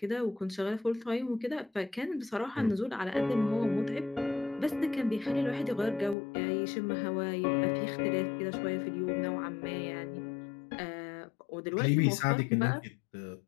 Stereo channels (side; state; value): right; drops out; at 6.2 s